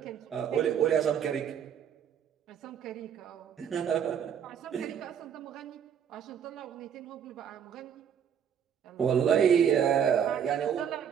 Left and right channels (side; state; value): left; quieter; 8.3 dB